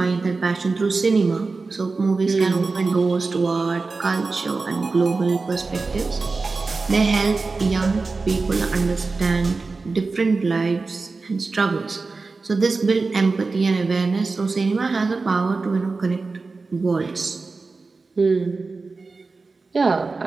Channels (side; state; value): left; quieter; 4.0 dB